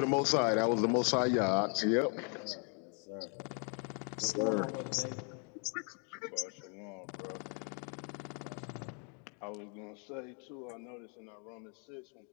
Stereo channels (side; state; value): right; quieter; 39.3 dB